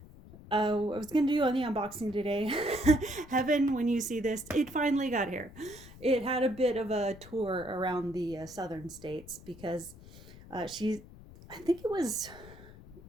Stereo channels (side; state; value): left; noise; rumble, 18 dB below the sound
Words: I was going to do on the unboxing today. Heaven, when you see this, it finally got here. It had a bit of a tour around the southern states, because I think it was